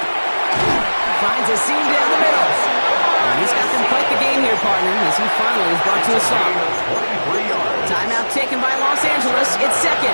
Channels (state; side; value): inverted; both; correlation -1.00